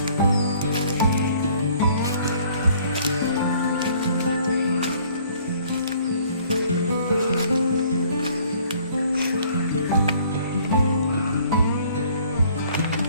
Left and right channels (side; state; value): both; inverted; correlation -0.57